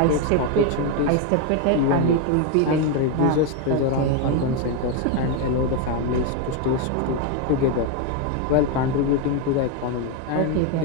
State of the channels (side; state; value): both; different; correlation 0.02